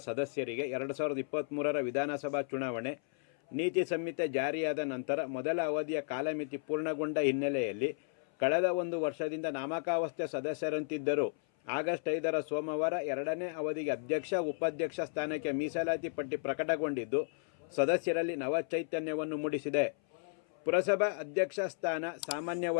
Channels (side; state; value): right; silent; 55 dB below the other